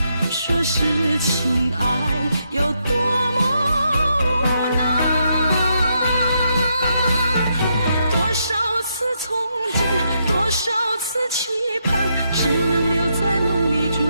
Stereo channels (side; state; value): both; inverted; correlation -0.79